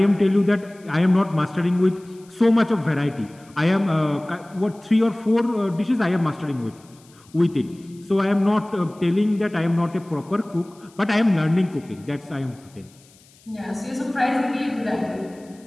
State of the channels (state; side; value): noise; left; hiss, 28 dB below the sound